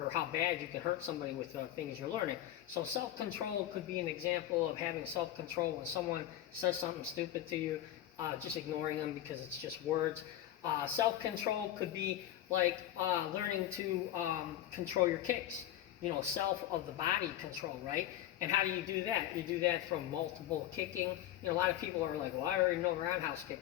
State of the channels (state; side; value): quieter; right; 12.7 dB